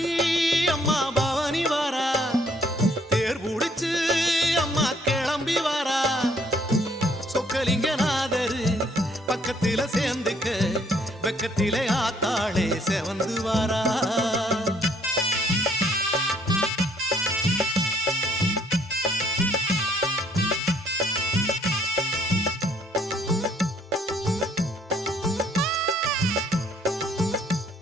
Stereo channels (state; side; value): normal; both; correlation 0.64